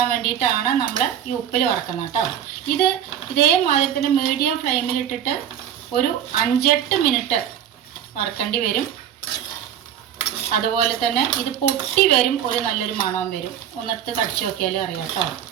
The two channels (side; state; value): left; quieter; 9.6 dB